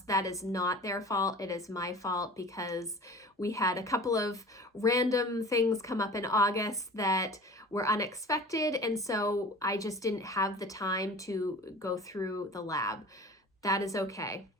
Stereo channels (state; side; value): normal; both; correlation 0.41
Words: That is not their fault. It is my fault because we had a couple of random things come up in August that were unexpected. And so I just didn't have the time to go through the lab. That is okay.